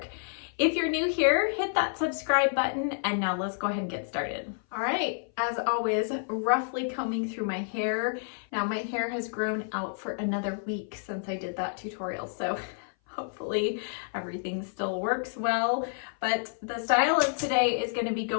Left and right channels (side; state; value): right; silent; 57 dB below the other